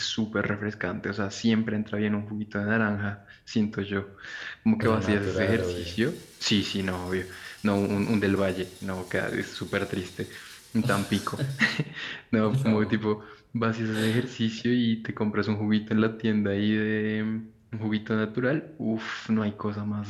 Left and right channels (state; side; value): identical; both; correlation 1.00